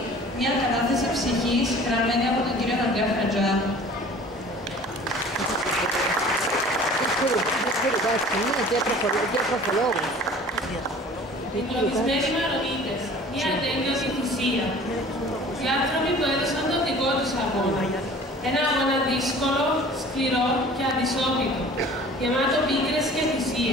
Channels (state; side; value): normal; both; correlation 0.46